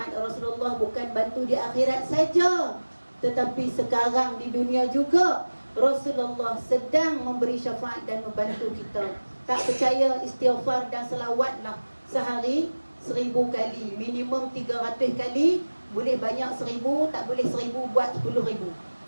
Rasulullah bukan bantu di akhirat saja, tetapi sekarang di dunia juga Rasulullah sedang memberi syafaat dan membantu kita. Tak percaya, istighfar dan selawatlah sehari 1000 kali. Minimum 300 kali. Boleh banyak 1000, tak boleh 1000 buat 10,000.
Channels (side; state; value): both; inverted; correlation -1.00